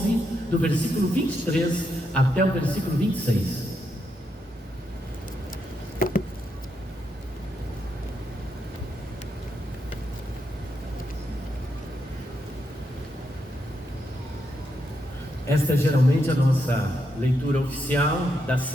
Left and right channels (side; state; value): both; normal; correlation 0.81